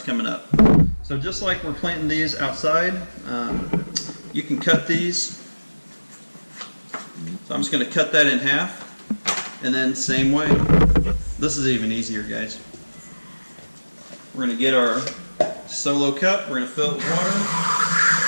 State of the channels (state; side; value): inverted; both; correlation -1.00